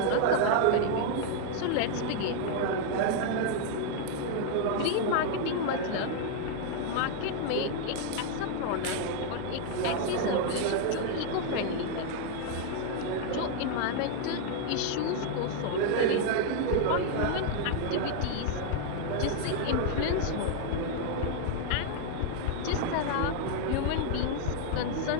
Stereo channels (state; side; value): different; both; correlation 0.00